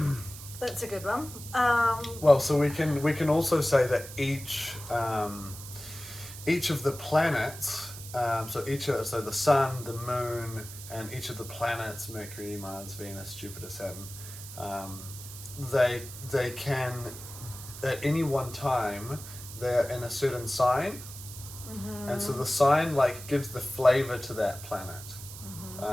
That's a good one. Well, so we can also say that each of the planets, so the sun, the moon, and each of the planets, Mercury, Mars, Venus, Jupiter, Saturn, they can at any one time they're in a certain sign, and so the sign like gives the flavor to that planet.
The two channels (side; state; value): right; noise; hiss, 13 dB below the sound